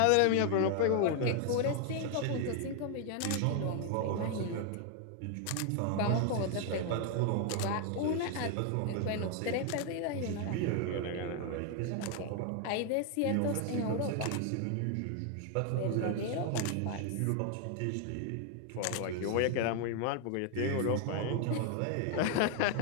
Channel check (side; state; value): both; different; correlation 0.00